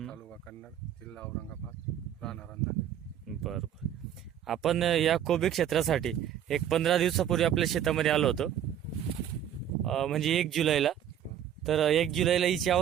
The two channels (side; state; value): left; quieter; 10.0 dB